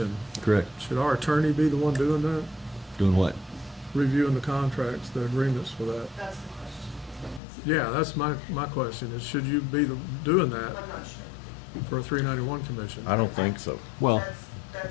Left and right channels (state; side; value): drops out; right; at 7.4 s